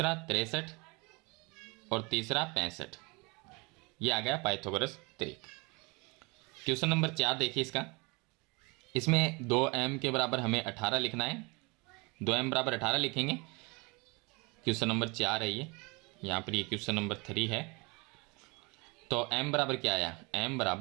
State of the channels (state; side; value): quieter; left; 27.8 dB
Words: 63 और तीसरा 65। ये आ गया पाइथागोरस त्रिक। क्वेश्चन नंबर 4 देखिए इसका, इसमें 2m के बराबर हमें 18 लिखना है, 2m बराबर 18 लिखेंगे। क्वेश्चन नंबर 4 है ये, यहाँ पर ये क्वेश्चन नंबर 3 है। तो m बराबर क्या आया, m